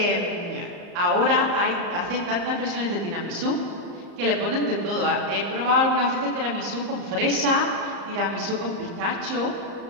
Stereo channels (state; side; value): late; left; 34 ms